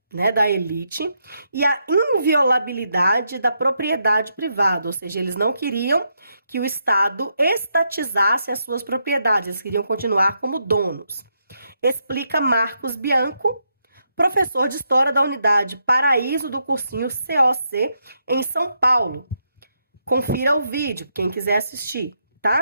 né, da elite e a inviolabilidade da propriedade privada, ou seja, eles não queriam que o Estado estatizasse as suas propriedades, eles queriam continuar como donos. Explica Marcos Bianco, professor de História da Unidade Paraíso do cursinho COC em São Paulo. Confira o vídeo, quem quiser assistir,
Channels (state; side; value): inverted; both; correlation -0.80